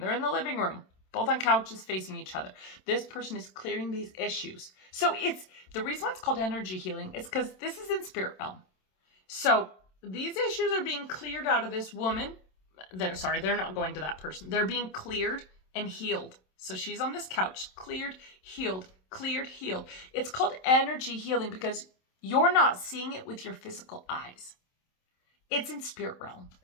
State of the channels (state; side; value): late; right; 27 ms